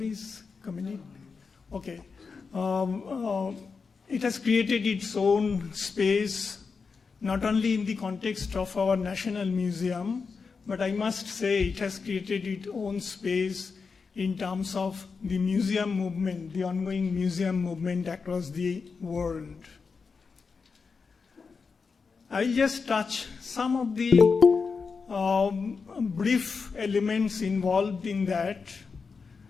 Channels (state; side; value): quieter; right; 5.0 dB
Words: coming in. Okay. It has created its own space, not only in the context of our National Museum, but I must say it has created its own space in terms of the museum movement, the ongoing museum movement across the world. I'll just touch some of the brief elements involved in that.